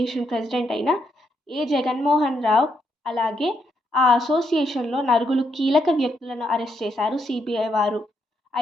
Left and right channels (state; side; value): normal; both; correlation 0.77